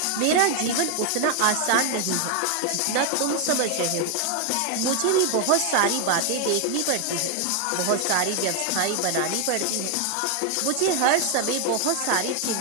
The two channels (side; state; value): both; different; correlation 0.00